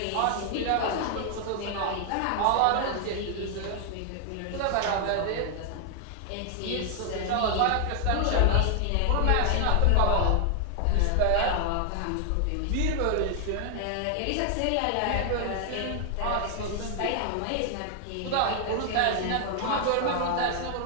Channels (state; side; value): different; both; correlation 0.00